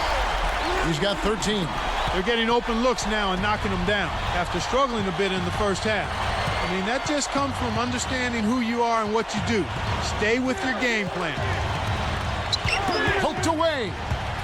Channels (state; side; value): identical; both; correlation 1.00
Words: He's got 13. They're getting open looks now and knocking them down after struggling a bit in the first half. I mean, that just comes from understanding who you are and what you do. Stay with your game plan. Poked away.